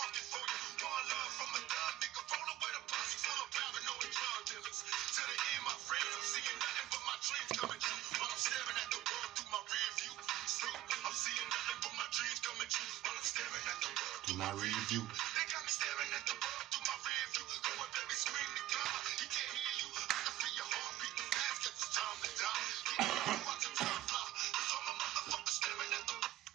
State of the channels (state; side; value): quieter; left; 14.2 dB